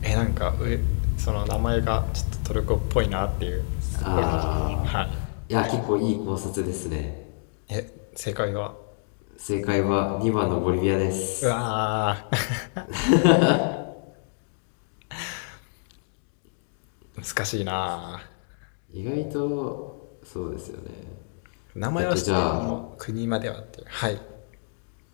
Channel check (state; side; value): silent; right; digital silence